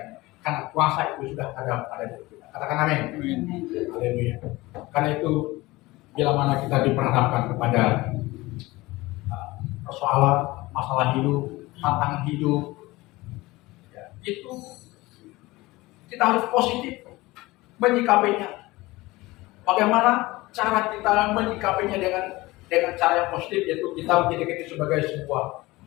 Karena kuasa itu sudah ada pada diri kita. Katakan amin. Haleluya. Karena itu bila mana kita diperhadapkan kepada persoalan, masalah hidup, tantangan hidup, ya, itu kita harus positif menyikapinya. Bagaimana cara kita menyikapinya dengan cara yang positif, yaitu kita menjadikan itu sebagai sebuah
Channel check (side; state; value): right; quieter; 20.4 dB